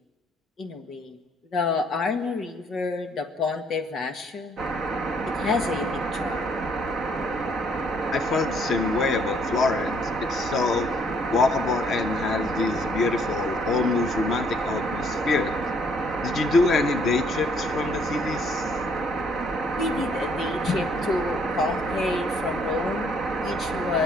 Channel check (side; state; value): both; normal; correlation 0.65